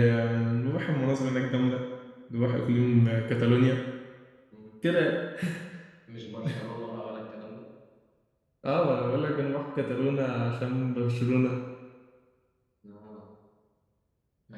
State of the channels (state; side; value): identical; both; correlation 1.00